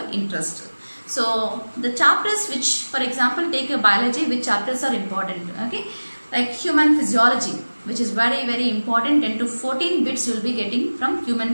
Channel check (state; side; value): inverted; both; correlation -1.00